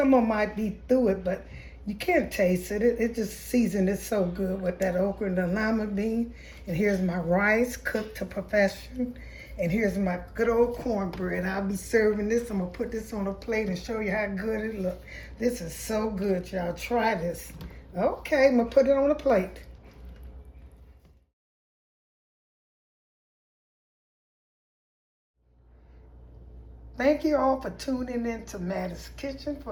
of them might be through it, but you can't taste it. It just seasoned it so good with that okra and the lima bean. And here's my rice cooked to perfection. And here's my good old cornbread. I'll be serving this. I'm gonna put this on a plate and show you how good it looks. This is so good, y'all. Try this. Okay, I'm gonna put it on a plate. Thank you all for tuning in to Mattie's Kitchen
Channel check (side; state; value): both; identical; correlation 1.00